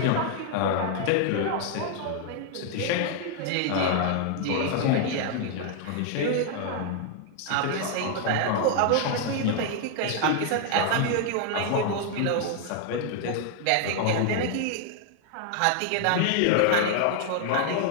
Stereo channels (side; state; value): both; different; correlation 0.00